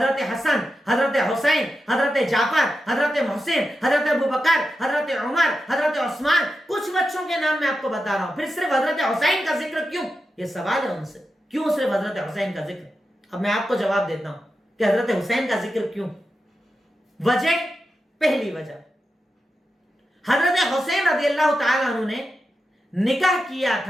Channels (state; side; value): normal; both; correlation 0.89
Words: حسن، حضرت حسین، حضرت جعفر، حضرت محسن، حضرت ابو بکر، حضرت عمر، حضرت عثمان، کچھ بچوں کے نام میں آپ کو بتا رہا ہوں۔ پھر صرف حضرت حسین کا ذکر کیوں؟ یہ سوال ہے ان سے، کیوں صرف حضرت حسین کا ذکر؟ اب میں آپ کو جواب دیتا ہوں کہ حضرت حسین کا ذکر کیوں۔ وجہ، پہلی وجہ، حضرت حسین رضی اللہ تعالیٰ عنہ نے نکاح کیا